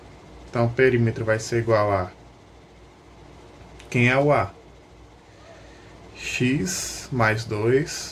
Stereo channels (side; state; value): both; identical; correlation 1.00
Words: Então, perímetro vai ser igual a... Quem é o A? X mais